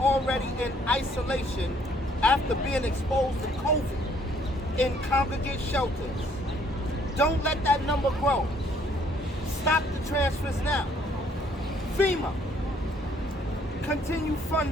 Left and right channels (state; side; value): normal; both; correlation 0.64